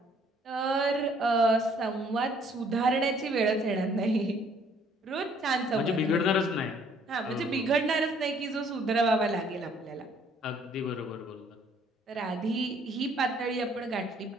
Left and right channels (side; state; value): both; normal; correlation 0.62